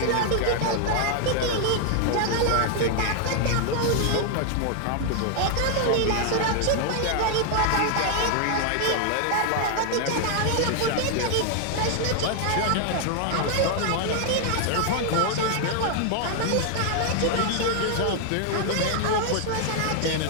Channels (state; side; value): different; both; correlation 0.00